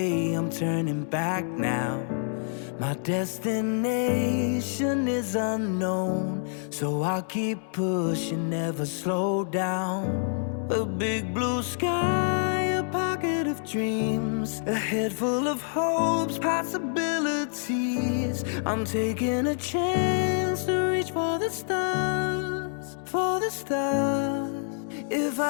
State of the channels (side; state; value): right; silent; 60 dB below the other